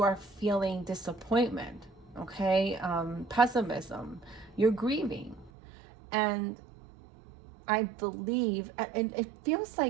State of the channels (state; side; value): drops out; left; at 5.5 s